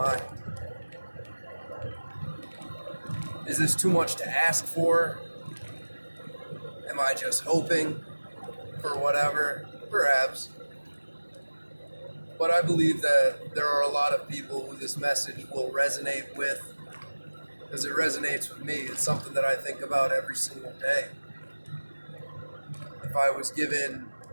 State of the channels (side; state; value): both; inverted; correlation -1.00